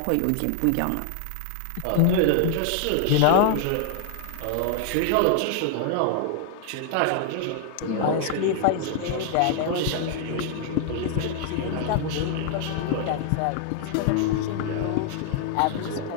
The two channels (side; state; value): both; different; correlation 0.00